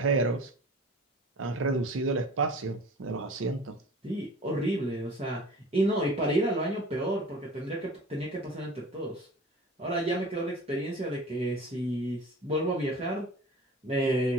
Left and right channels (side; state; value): both; normal; correlation 0.42